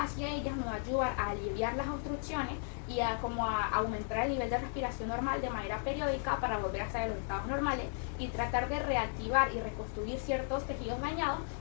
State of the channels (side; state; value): right; silent; 54 dB below the other